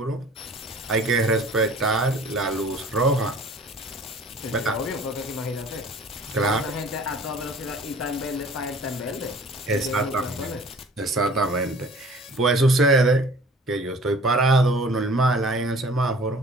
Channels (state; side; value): normal; both; correlation 0.49